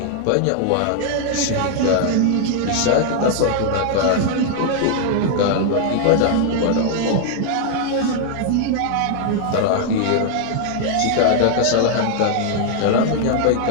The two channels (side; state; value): both; different; correlation 0.00